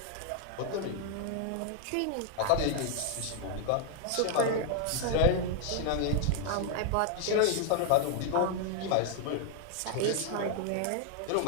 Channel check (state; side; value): different; both; correlation 0.00